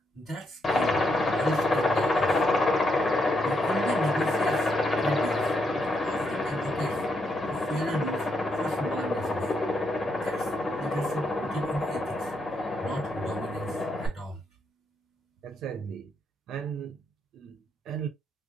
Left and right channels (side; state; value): both; normal; correlation 0.79